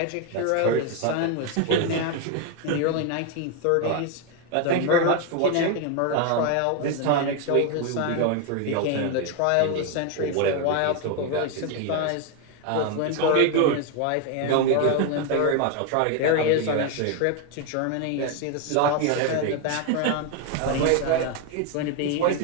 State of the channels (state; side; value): different; both; correlation 0.01